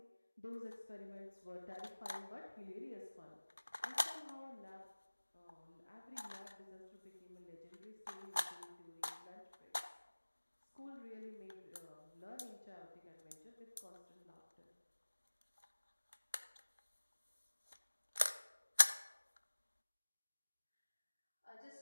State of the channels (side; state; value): both; inverted; correlation -1.00